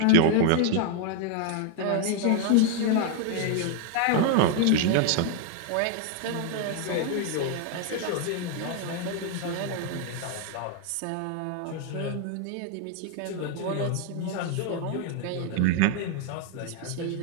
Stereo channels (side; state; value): both; different; correlation 0.00